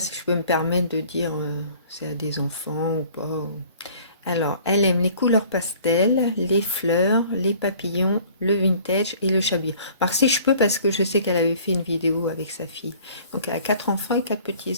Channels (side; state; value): both; inverted; correlation -0.51